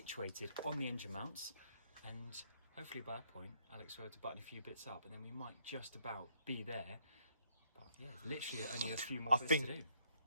on the engine mounts, and hopefully by that point Alex will be able to button a few bits up, and then we might just about be there. But yeah, literally only a few more bits to do.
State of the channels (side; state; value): both; inverted; correlation -0.70